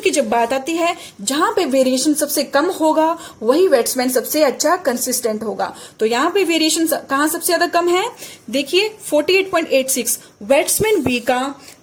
की जब बात आती है जहां पे वेरिएशन सबसे कम होगा वही बैट्समैन सबसे अच्छा कंसिस्टेंट होगा। तो यहाँ पे वेरिएशन कहाँ सबसे ज्यादा कम है, देखिए 48.86 बैट्समैन बी का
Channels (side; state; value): both; identical; correlation 1.00